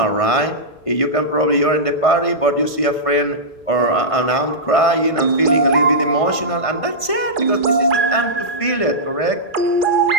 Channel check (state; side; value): late; right; 1.5 ms